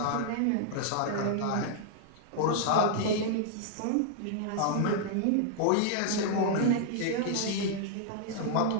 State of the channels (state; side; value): different; both; correlation -0.01